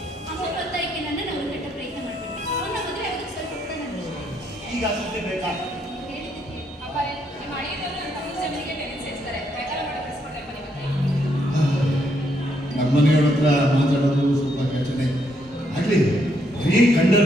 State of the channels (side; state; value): both; normal; correlation 0.74